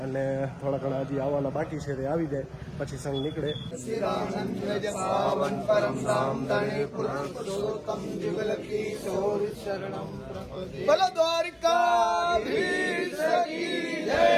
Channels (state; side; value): identical; both; correlation 1.00